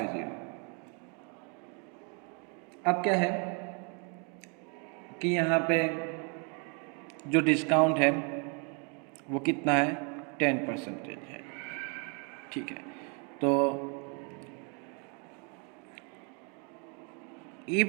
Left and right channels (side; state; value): left; quieter; 36.4 dB